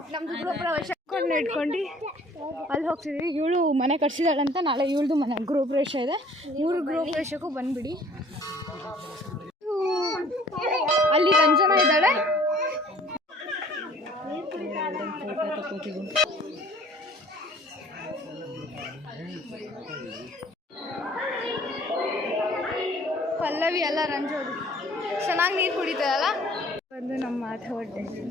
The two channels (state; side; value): normal; both; correlation 0.54